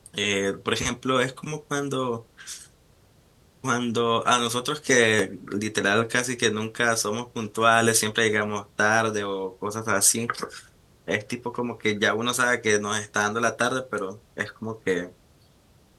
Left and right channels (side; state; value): both; identical; correlation 1.00